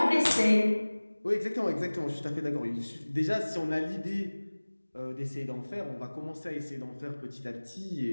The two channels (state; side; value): inverted; both; correlation -1.00